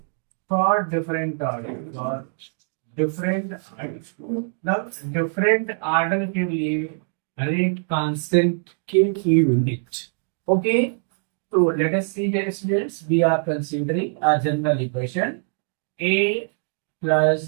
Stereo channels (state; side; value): silent; left; 63 dB below the other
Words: for different order, different order के लिए rate constant के की यूनिट। ओके, तो let us see here students, we are considering a general equation a plus